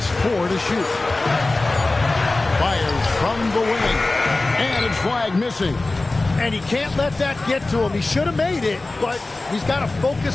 4 to shoot. Fires from the wing. And it's Flag missing. And he can't let that get to him. He should have made it, but he's got to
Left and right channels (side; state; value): right; quieter; 3.1 dB